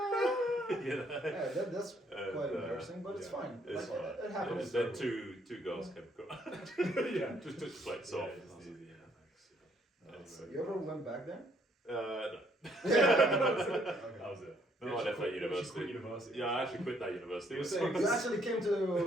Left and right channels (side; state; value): both; normal; correlation 0.68